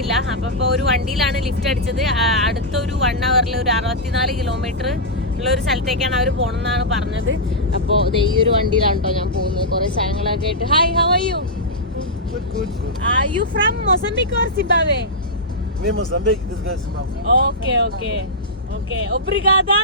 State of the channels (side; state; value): both; normal; correlation -0.09